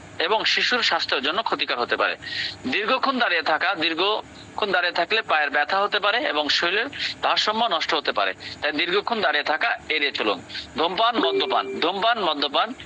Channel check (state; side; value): identical; both; correlation 1.00